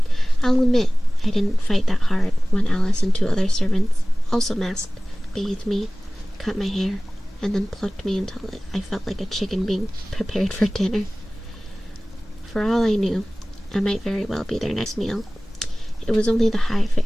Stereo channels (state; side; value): normal; both; correlation 0.98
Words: I'll admit, I didn't fight that hard when Alice and 2 other servants, also masked, bathed me, cut my hair, and then plucked me until I felt like a chicken being prepared for dinner. For all I knew, I might very well be their next meal. It was only the high